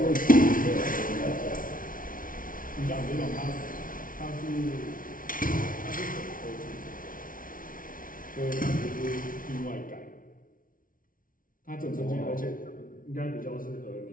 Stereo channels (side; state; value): right; late; 0.39 ms